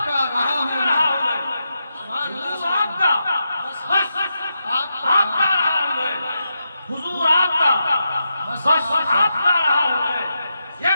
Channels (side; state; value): both; inverted; correlation -0.86